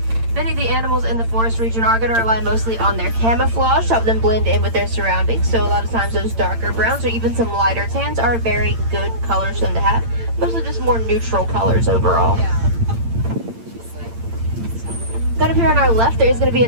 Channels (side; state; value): left; late; 8.8 ms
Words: Many of the animals in the forest region are going to rely mostly on their camouflage to help them blend in with their surroundings. So a lot of times those darker browns or even some lighter tans are very good colors for them to have. Mostly just more neutral colors overall. Got up here on our left, there is going to be a